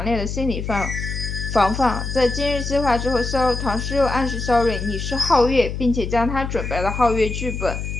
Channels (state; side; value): noise; left; hum, 5 dB below the sound